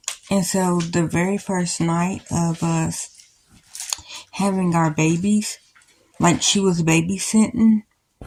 And so the very first night of us having our babies, she was babysitting.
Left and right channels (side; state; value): both; identical; correlation 1.00